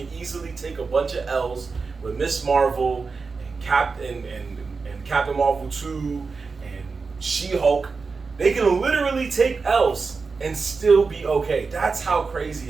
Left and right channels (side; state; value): left; quieter; 4.6 dB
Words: easily take a bunch of L's with Miss Marvel and Captain Marvel 2 and She-Hulk. They can literally take L's and still be okay. That's how